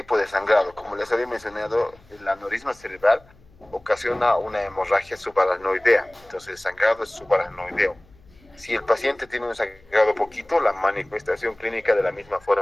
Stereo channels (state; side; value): noise; left; hum, 28 dB below the sound